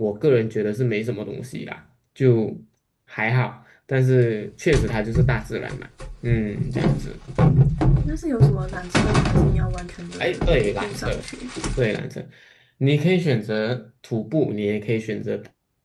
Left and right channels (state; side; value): identical; both; correlation 1.00